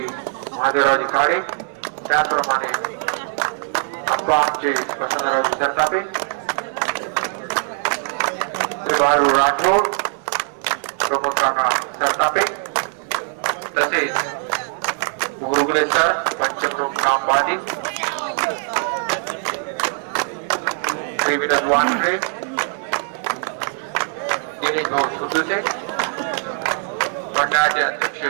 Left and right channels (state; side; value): silent; left; 56 dB below the other